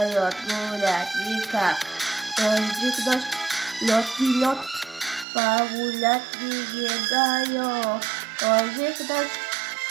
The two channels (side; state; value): left; drops out; at 5.2 s